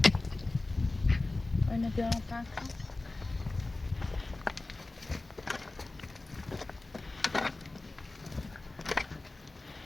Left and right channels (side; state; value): right; quieter; 3.1 dB